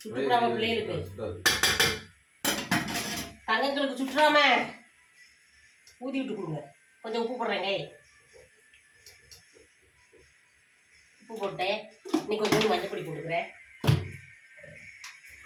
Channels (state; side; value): identical; both; correlation 1.00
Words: சுட்டுறாம பிள்ளைகளுக்கு தங்கங்களுக்கு சுட்டுறாம ஊதி விட்டு கொடுங்க. கொஞ்சம் உப்பு போடுறேங்க. உப்பு போட்டேன். இன்னைக்கு கொஞ்சம் மஞ்சள் பொடி போட்டுக்கிறேன்.